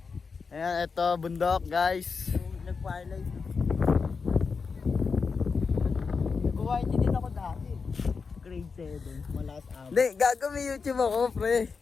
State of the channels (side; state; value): right; quieter; 5.1 dB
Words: Ayan, ito bundok guys. Nag-firelight. Nag-white din ako dati. Grade 7, malakas ako. Hindi, gago may YouTube ako, pre.